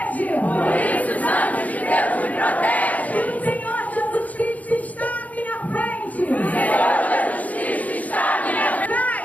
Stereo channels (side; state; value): right; late; 0.074 ms